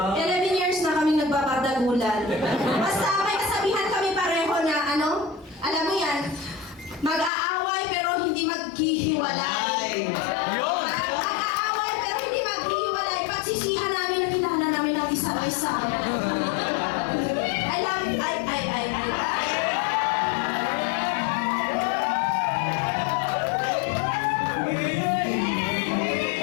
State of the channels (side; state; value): right; drops out; at 7.3 s